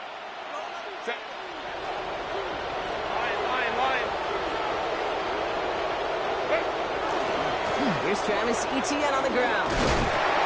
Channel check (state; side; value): identical; both; correlation 1.00